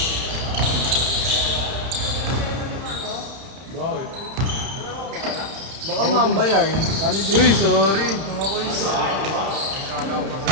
Bakit? Baka mambayar. Uy, sorry. Mga ko isa. Kala ko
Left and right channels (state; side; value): late; left; 31 ms